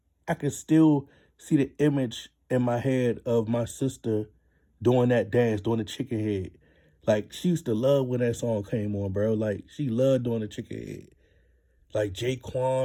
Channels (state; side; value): identical; both; correlation 1.00